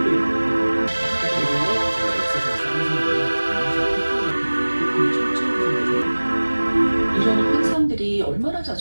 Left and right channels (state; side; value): inverted; both; correlation -1.00